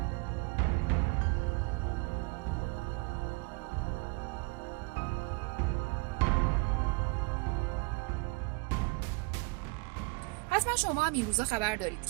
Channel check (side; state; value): left; quieter; 28.0 dB